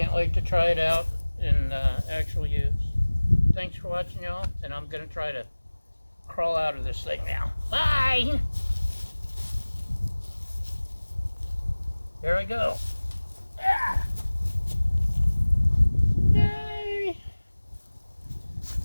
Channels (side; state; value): both; inverted; correlation -1.00